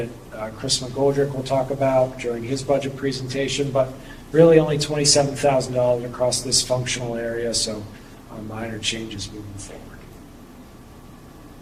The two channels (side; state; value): both; identical; correlation 1.00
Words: Chris McGoldrick will talk about during his budget presentation, but really only $27,000 across this functional area, so minor changes moving